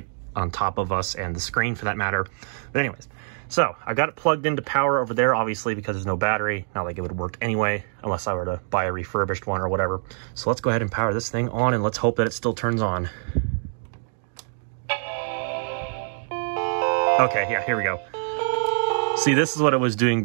on top of us and the screen for that matter. But anyways, so I got it plugged into power over there, obviously, because there's no battery. Not like it would work anyway, unless I were to buy a refurbished one or whatever. So let's go ahead and power this thing on, and let's hope that it still turns on. Okay, yeah, here we go. See, this is what it was doing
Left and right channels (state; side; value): silent; left; 61 dB below the other